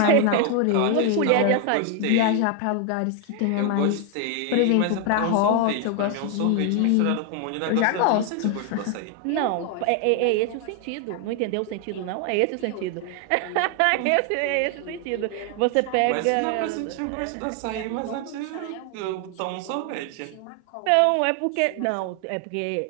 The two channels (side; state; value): both; different; correlation 0.00